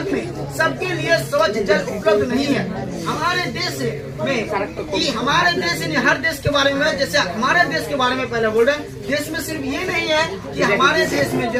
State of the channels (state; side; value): identical; both; correlation 1.00